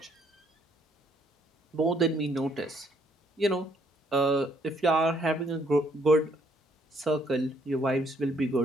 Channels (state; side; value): normal; both; correlation 0.67